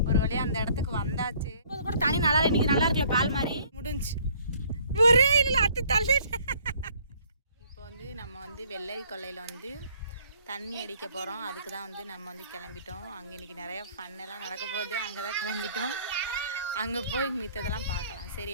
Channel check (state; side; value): inverted; both; correlation -0.59